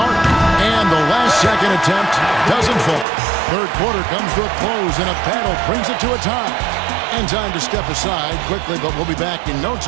And the last second attempt doesn't fall. Third quarter comes to a close, and a battle brings it to a tie. And time to step aside quickly, but we'll be back in no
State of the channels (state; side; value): drops out; left; at 3.1 s